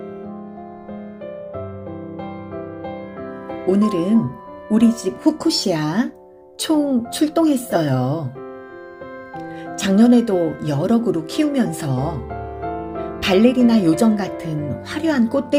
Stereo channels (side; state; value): both; identical; correlation 1.00